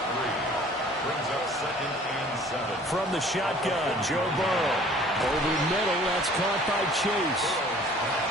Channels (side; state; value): both; normal; correlation 0.51